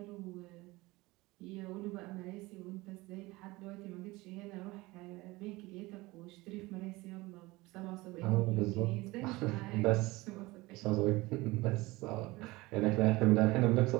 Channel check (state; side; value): quieter; left; 21.2 dB